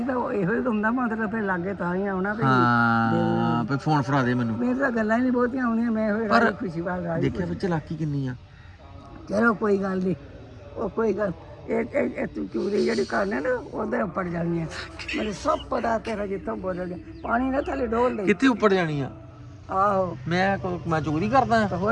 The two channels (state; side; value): identical; both; correlation 1.00